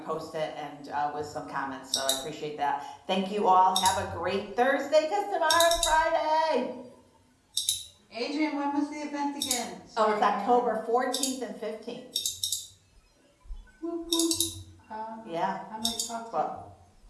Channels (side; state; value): both; identical; correlation 1.00